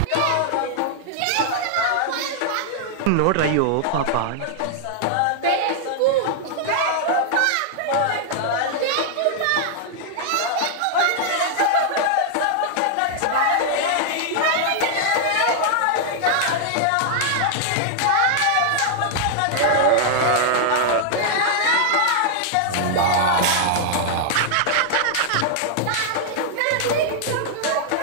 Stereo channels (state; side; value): different; both; correlation -0.01